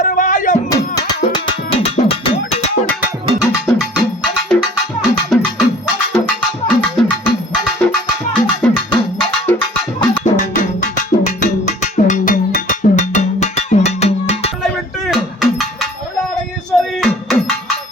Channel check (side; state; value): both; normal; correlation 0.49